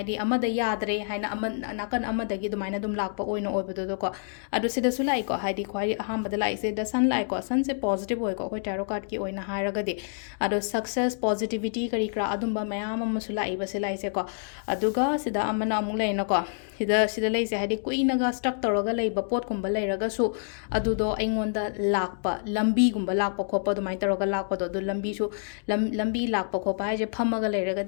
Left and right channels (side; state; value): right; silent; digital silence